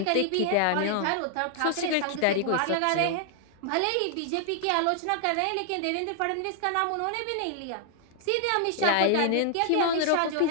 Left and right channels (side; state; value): both; different; correlation 0.00